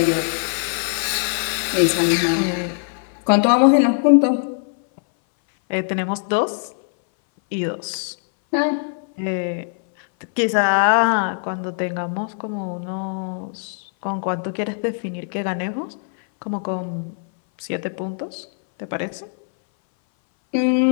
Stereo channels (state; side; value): silent; right; 61 dB below the other